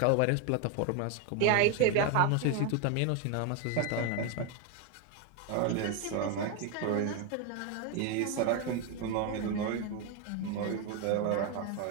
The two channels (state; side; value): different; both; correlation 0.01